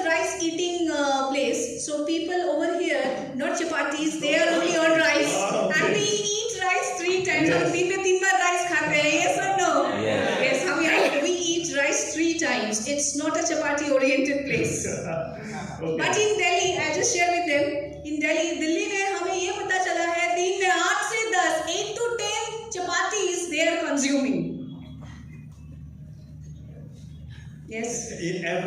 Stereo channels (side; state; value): both; identical; correlation 1.00